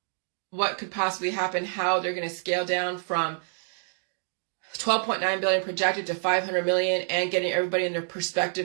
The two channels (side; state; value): left; silent; digital silence